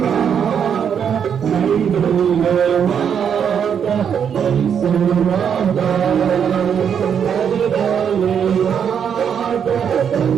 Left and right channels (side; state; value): left; quieter; 7.8 dB